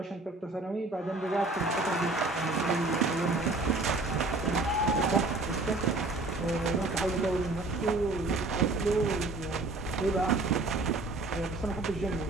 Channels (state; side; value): quieter; left; 3.2 dB